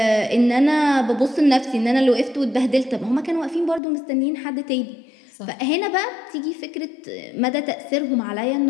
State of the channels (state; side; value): drops out; right; at 3.8 s